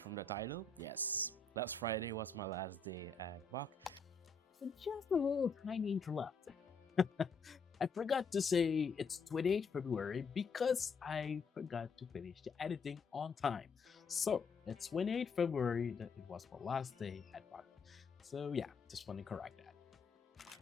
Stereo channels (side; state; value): right; quieter; 4.3 dB